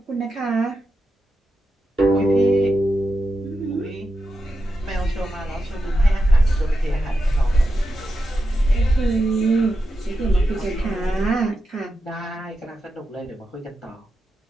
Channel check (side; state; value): both; normal; correlation 0.89